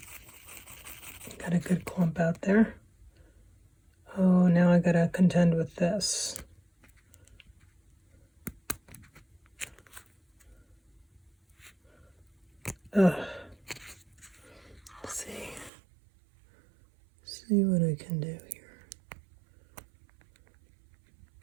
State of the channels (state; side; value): drops out; left; at 15.7 s